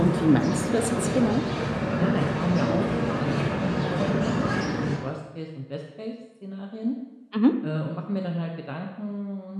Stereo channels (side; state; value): both; identical; correlation 1.00